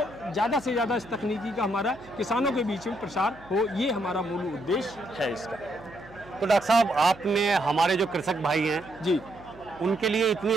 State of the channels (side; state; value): right; noise; hum, 22 dB below the sound